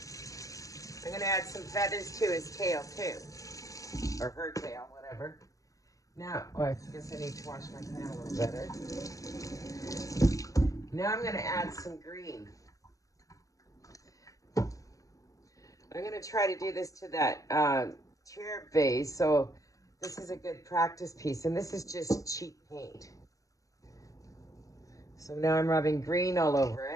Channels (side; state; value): right; late; 0.16 ms